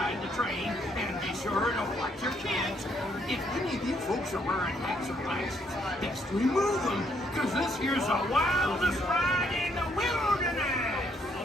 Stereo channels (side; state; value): both; normal; correlation 0.71